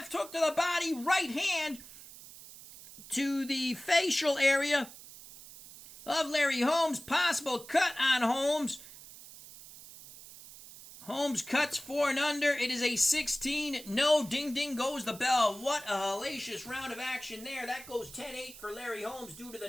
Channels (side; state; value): right; noise; hiss, 17 dB below the sound